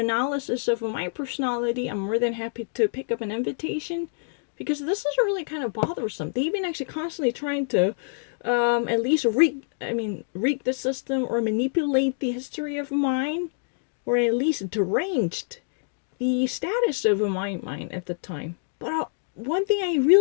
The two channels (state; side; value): silent; right; digital silence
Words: of my personality. I'm more than happy to pick up an invitation, because this is really kind of bothersome. They've been actually constantly trying to at least rig the system or manipulate the history of mine, or at least deranged the status of my mind at the time. But one thing I